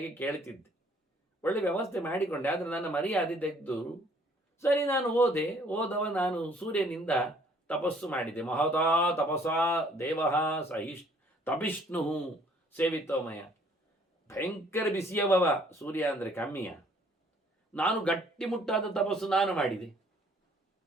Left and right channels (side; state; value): both; normal; correlation 0.60